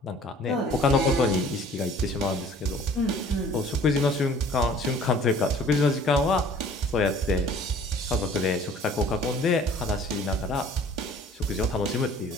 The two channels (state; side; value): normal; both; correlation 0.51